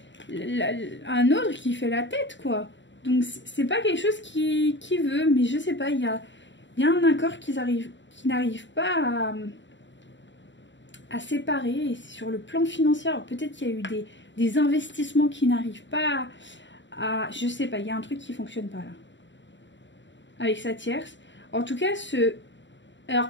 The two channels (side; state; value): right; late; 0.54 ms